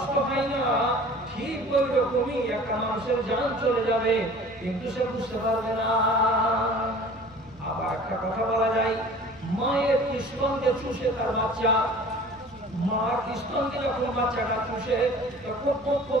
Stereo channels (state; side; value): noise; right; rumble, 26 dB below the sound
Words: হয় না। ঠিক ওই রকমই একটা মানুষের জান চলে যাবে, কিন্তু সে বুঝতে পারবে না। আবার একটা কথা বলা যায়, মায়ের স্তনকে চুষে তার বাচ্চা, মার স্তনকে যখন বাচ্চাটা চুষে, তখন